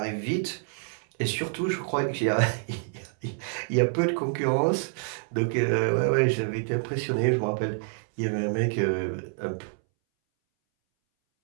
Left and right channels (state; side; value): silent; left; 60 dB below the other